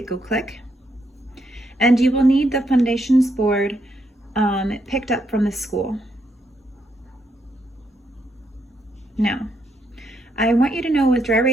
go click. And you will need the Fundations board picked up from the school. Now, I want you to know with dry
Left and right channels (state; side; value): normal; both; correlation 0.77